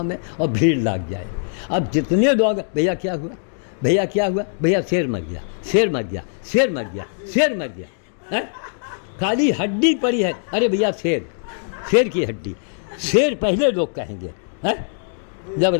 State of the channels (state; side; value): silent; right; digital silence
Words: और भीड़ लग जाए। अब जितने लोग भैया क्या हुआ, भैया क्या हुआ, भैया शेर मर गया, शेर मर गया, शेर मर गया, शेर मर गया है? खाली हड्डी पड़ी है, अरे भैया शेर, शेर की हड्डी, शेर पहले लोग कहेंगे है? जब